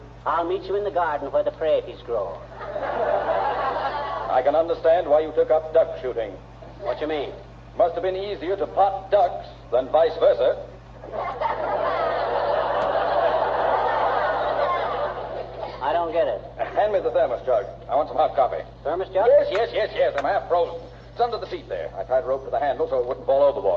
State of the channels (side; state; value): both; identical; correlation 1.00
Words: "I'll meet you in the garden where the praties grow." I can understand why you took up duck shooting. What you mean? Must have been easier to pot ducks than vice versa. I don't get it. Hand me the thermos jug. I want some hot coffee. Thermos jug? Yes. I'm half frozen. It's under the seat there. I tied a rope to the handle so it wouldn't fall